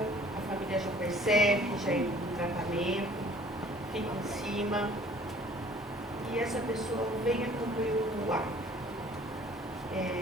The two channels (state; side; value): normal; both; correlation 0.53